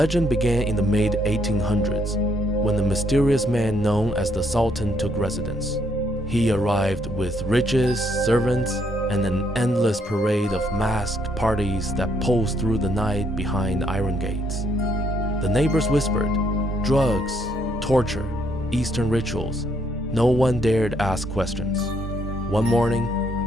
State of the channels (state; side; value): normal; both; correlation 0.71